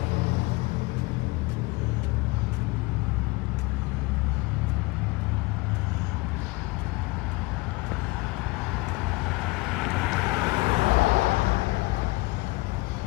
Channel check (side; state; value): right; quieter; 23.6 dB